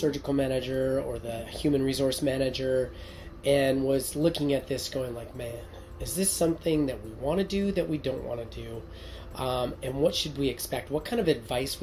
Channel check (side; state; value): both; identical; correlation 1.00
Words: manager or the human resource manager and was looking at this going like, man, is this something that we want to do, that we don't want to do? And what should we expect? What kind of advice